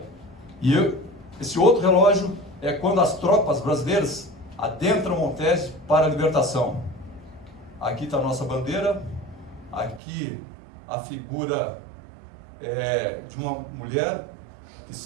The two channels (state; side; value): drops out; left; at 10.0 s